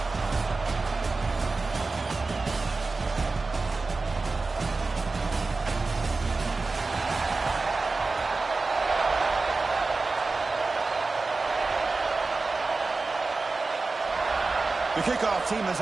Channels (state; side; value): quieter; left; 3.8 dB